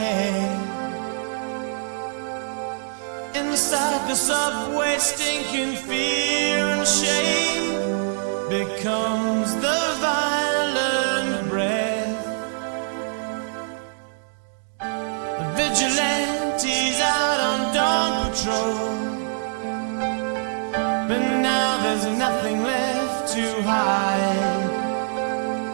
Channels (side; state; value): left; silent; digital silence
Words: Inside the subway, stinking fear and shame becomes the violent breath. The vigilantes out on dawn patrol, but now there's nothing left to hide.